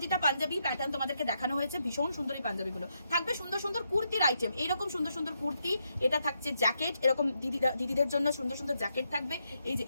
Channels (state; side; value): inverted; both; correlation -0.80